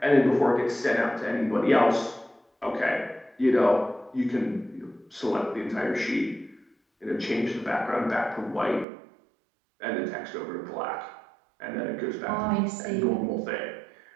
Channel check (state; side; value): drops out; left; at 8.8 s